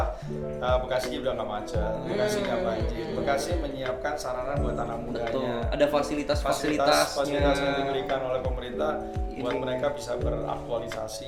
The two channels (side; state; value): both; identical; correlation 1.00